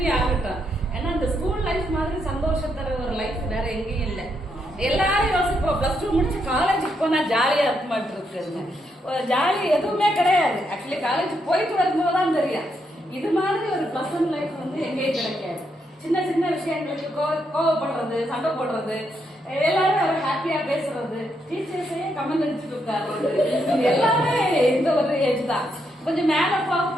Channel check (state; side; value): normal; both; correlation 0.79